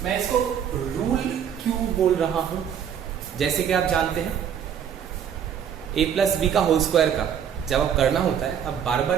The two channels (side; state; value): left; quieter; 8.6 dB